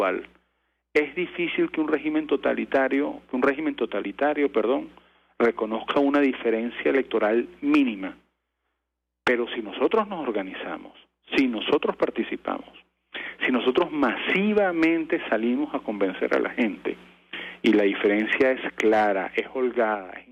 Es difícil que un régimen totalitario, reconozca una diferencia electoral mínima. Pero si nosotros nos organizamos, si nosotros participamos, si nosotros masivamente salimos a convencer a la gente y la diferencia es clara, es holgada, es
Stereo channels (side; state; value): both; identical; correlation 1.00